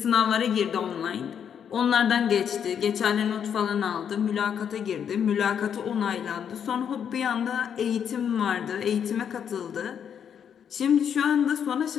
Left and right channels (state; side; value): quieter; right; 8.1 dB